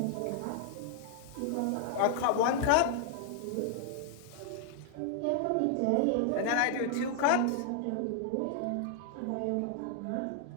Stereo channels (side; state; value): both; different; correlation 0.00